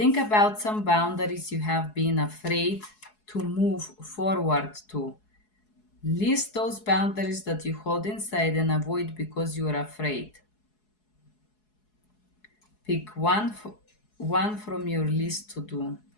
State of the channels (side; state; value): right; late; 4.7 ms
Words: about some boundaries you have been afraid to move forward to. List those boundaries that you hold inside and avoid because you are afraid. Pick one from your list to do.